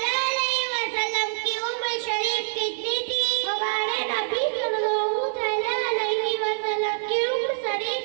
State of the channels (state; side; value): silent; left; 61 dB below the other